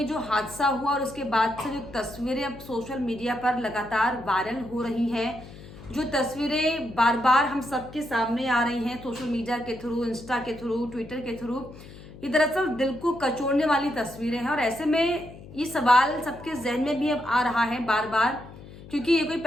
जो हादसा हुआ और उसके बाद से जो तस्वीरें अब सोशल मीडिया पर लगातार वायरल हो रही हैं, जो तस्वीरें बार बार हम सबके सामने आ रही हैं सोशल मीडिया के थ्रू, इंस्टा के थ्रू, ट्विटर के थ्रू, ये दरअसल दिल को कचोड़ने वाली तस्वीरें हैं। और ऐसे में ये सवाल सबके जहन में भी अब आ रहा है बार बार, क्योंकि ये कोई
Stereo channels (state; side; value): noise; left; hum, 17 dB below the sound